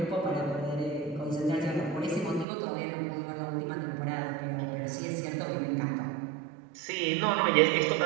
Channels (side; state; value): left; drops out; at 2.5 s